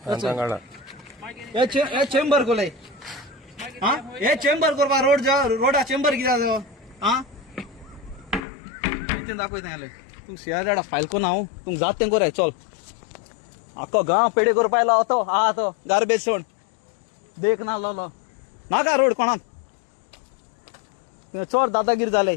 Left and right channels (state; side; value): drops out; right; at 8.5 s